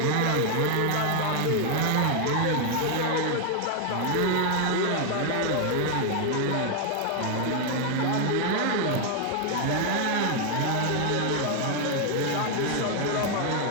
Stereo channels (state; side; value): different; both; correlation 0.00